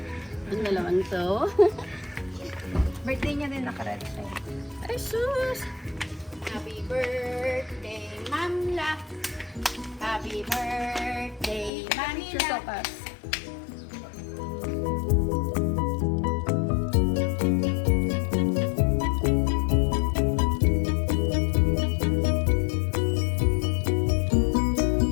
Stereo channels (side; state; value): right; drops out; at 11.7 s